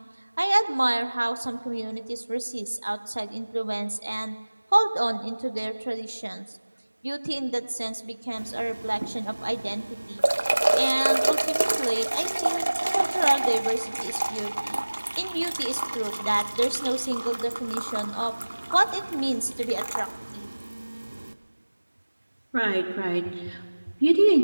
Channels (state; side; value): inverted; both; correlation -1.00